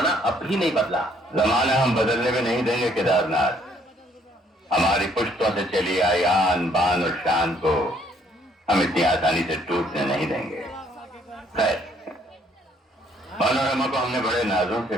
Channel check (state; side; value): normal; both; correlation 0.65